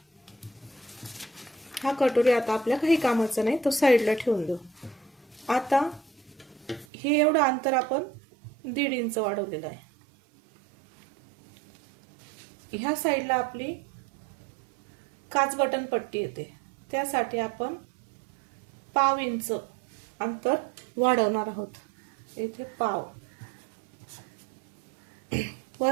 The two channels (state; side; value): drops out; left; at 6.9 s